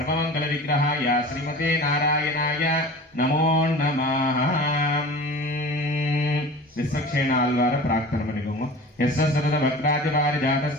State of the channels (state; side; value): normal; both; correlation 0.38